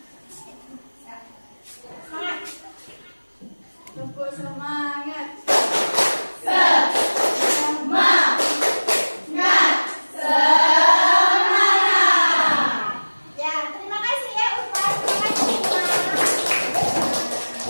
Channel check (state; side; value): inverted; both; correlation -1.00